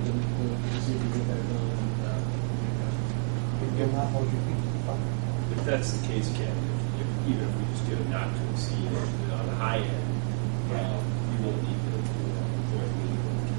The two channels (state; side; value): silent; left; 57 dB below the other